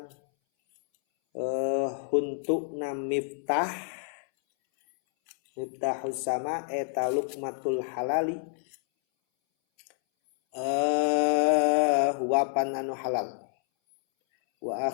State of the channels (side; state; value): right; silent; 59 dB below the other